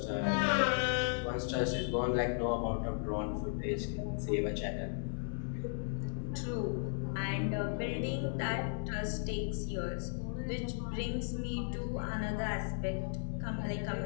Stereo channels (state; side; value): silent; right; digital silence